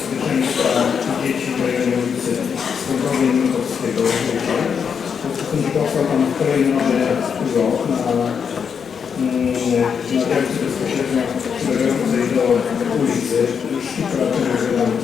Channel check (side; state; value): right; quieter; 6.8 dB